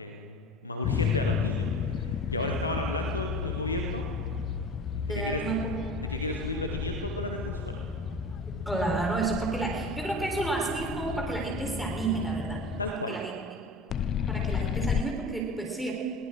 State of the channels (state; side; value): normal; both; correlation 0.36